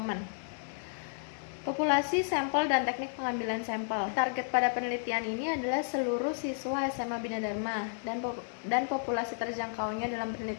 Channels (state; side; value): silent; right; digital silence